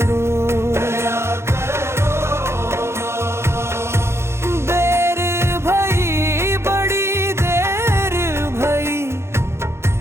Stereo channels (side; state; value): left; late; 0.13 ms